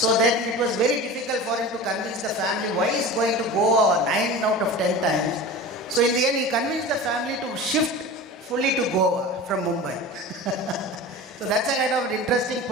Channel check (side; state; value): both; normal; correlation 0.33